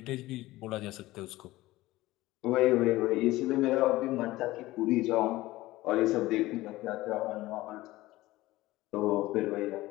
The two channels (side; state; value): right; quieter; 17.9 dB